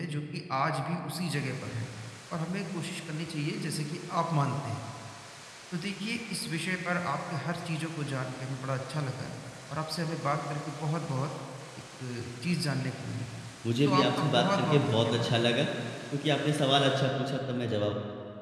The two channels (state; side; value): identical; both; correlation 1.00